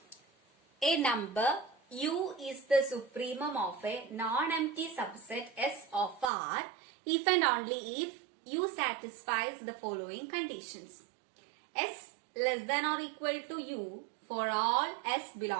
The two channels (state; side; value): drops out; left; at 6.2 s